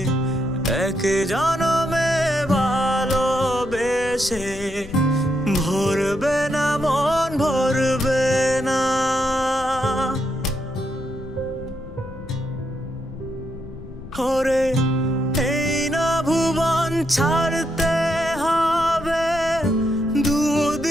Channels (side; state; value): left; noise; rumble, 14 dB below the sound